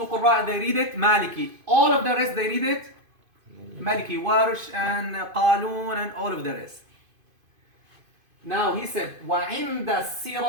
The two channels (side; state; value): left; late; 2.5 ms